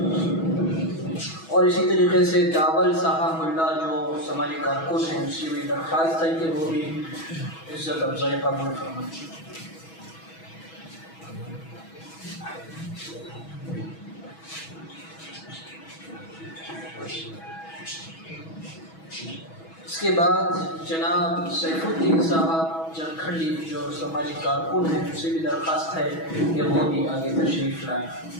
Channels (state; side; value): late; right; 6.2 ms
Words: اور اسی طریقے سے داول صاحب ملا جو سماجی کارکن ہیں ان سے بھی درخواست ہے کہ وہ بھی عزت افزائی قبول فرمائیں. اس کے بعد جناب سیف الدین صاحب جرکھنڈی جو سماجی کارکن ہیں ان سے بھی درخواست ہے کہ وہ بھی آگے تشریف لائیں.